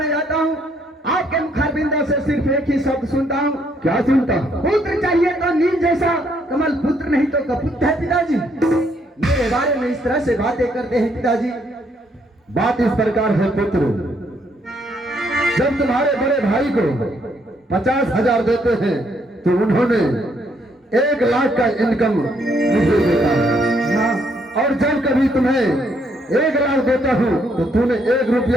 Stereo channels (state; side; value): normal; both; correlation 0.71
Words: जाता हूँ आपके मुखारबिंदों से सिर्फ एक ही शब्द सुनता हूँ। क्या सुनता? पुत्र चाहिए तो नील जैसा, कमल पुत्र नहीं तो कपुत है पिताजी। मेरे बारे में इस तरह से बातें करते हैं पिताजी। बात इस प्रकार है पुत्र, जब तुम्हारे बड़े भाई को 50,000 देते हैं तो उन्होंने 1 लाख का इनकम मुझे देता है। हाँ। और जब कभी तुम्हें 1 लाख देता हूँ तो तूने 1